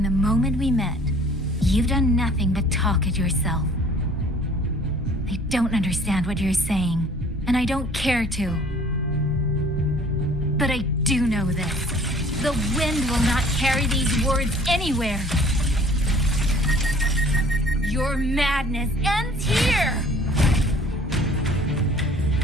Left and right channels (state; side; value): normal; both; correlation 0.52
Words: the moment we met, you've done nothing but talk at yourself. I don't understand what you're saying, and I don't care to. But I do know this. The wind will not carry these words anywhere. Your madness ends here!